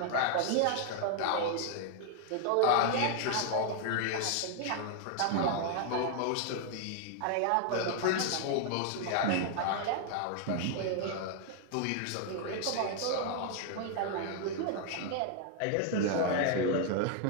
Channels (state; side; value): different; both; correlation 0.00